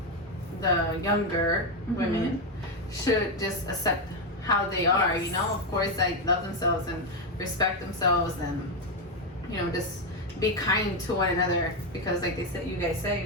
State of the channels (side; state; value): both; normal; correlation 0.07